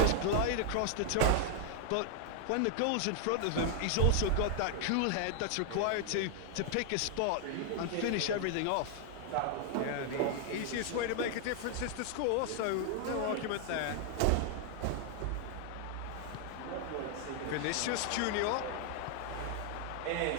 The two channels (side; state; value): both; different; correlation 0.00